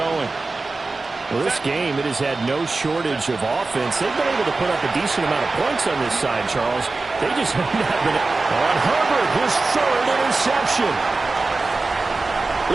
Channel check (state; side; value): quieter; left; 3.6 dB